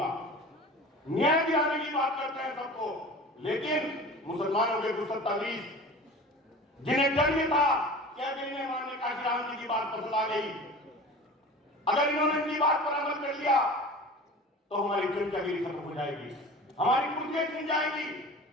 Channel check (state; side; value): normal; both; correlation 0.38